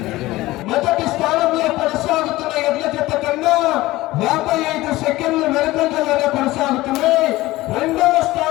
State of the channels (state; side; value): quieter; right; 18.1 dB